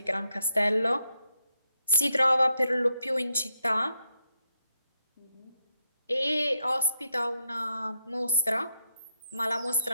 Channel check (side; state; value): both; inverted; correlation -0.82